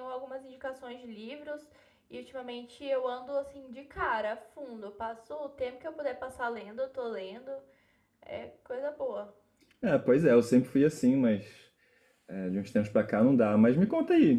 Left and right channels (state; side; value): identical; both; correlation 1.00